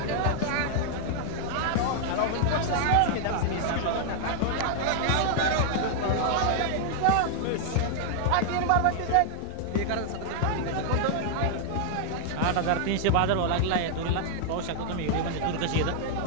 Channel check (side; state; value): both; different; correlation 0.00